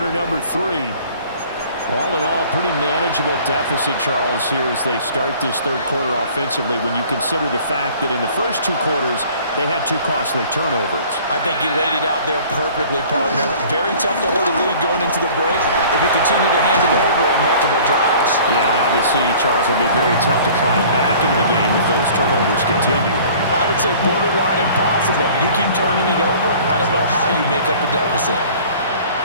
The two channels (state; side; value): inverted; both; correlation -0.49